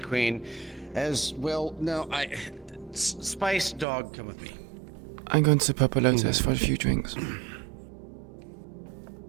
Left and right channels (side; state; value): left; drops out; at 3.9 s